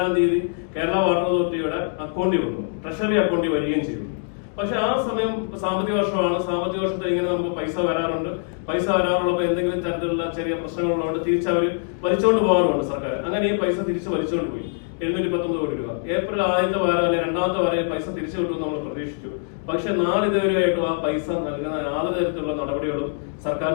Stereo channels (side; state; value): right; silent; digital silence